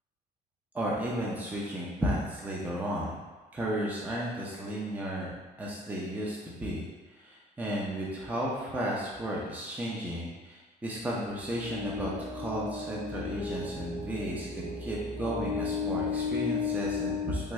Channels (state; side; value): normal; both; correlation 0.49